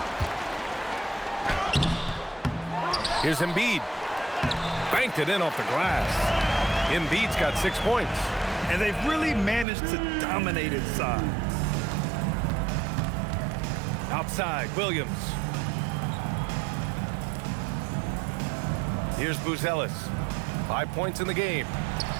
Here's Embiid. Banked it in off the glass. Embiid's got 6 points. And they've really managed to dominate inside. Outside, Williams. Here's Buzelis. 5 points in the game.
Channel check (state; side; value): drops out; left; at 9.7 s